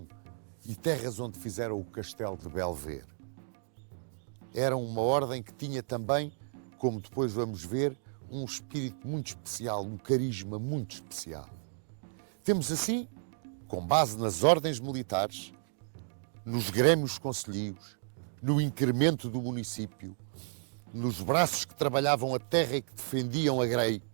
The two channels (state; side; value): silent; left; digital silence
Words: e terras onde fizeram o castelo de Belver. Eram uma ordem que tinha também, como depois vamos ver, um espírito muito especial, um carisma muito especial. Temos assim, com base nas ordens militares, nos grêmios concelhios, no incremento do município, nos braços que trabalhavam a terra e que defendiam a grei,